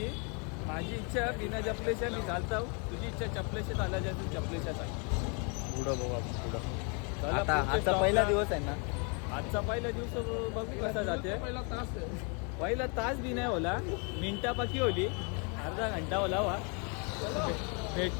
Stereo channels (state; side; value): quieter; right; 35.4 dB